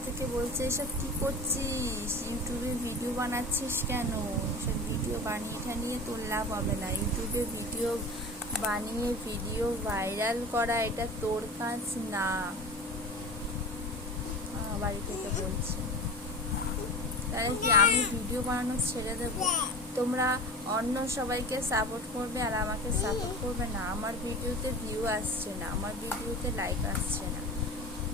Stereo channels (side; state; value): both; normal; correlation 0.33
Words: থেকে বলছে, এসব কী করছিস, ইউটিউবে ভিডিও বানাচ্ছিস কেন? এসব ভিডিও বানিয়ে ঠানিয়ে তোর লাভ হবে না। ইউটিউবে ভিডিও বানিয়ে ভিডিও ভাইরাল করা এটা তোর কাজ না। বাড়ি থেকে বলছে, তাহলে কি আমি ভিডিও বানানো ছেড়ে দেবো? তোমরা অন্য সবাইকে সাপোর্ট করবে আর আমাকে সাপোর্ট করবে না। আমার ভিডিওতে ভিউ আসছে না, আমার ভিডিওতে লাইক আসছে না।